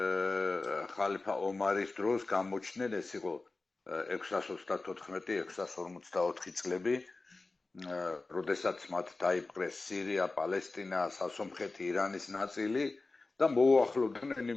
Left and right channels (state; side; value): quieter; right; 3.5 dB